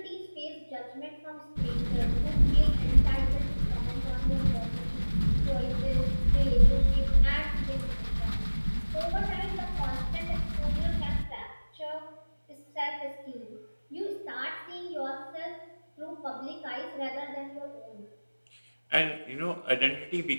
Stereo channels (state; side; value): inverted; both; correlation -1.00